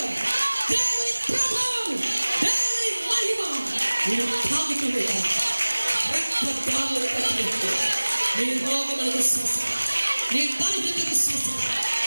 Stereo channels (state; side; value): inverted; both; correlation -1.00